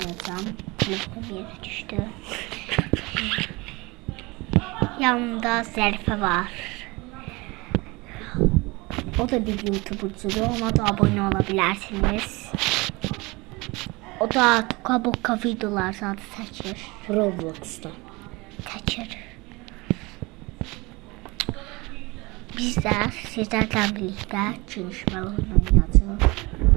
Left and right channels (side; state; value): left; quieter; 24.2 dB